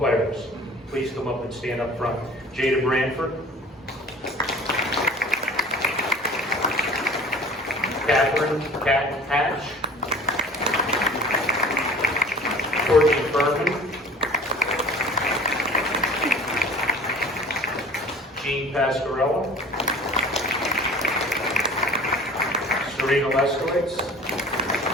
please come up and stand up front. Jada Branford. Catherine Hatch. Courtney Furman. Jean Pasquarello. Serena Leskowitz.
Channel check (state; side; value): normal; both; correlation 0.45